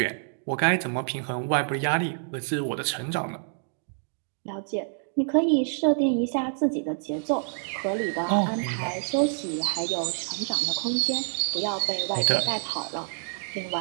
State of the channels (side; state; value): left; silent; digital silence